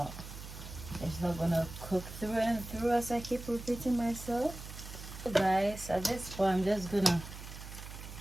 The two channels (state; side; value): noise; right; hum, 12 dB below the sound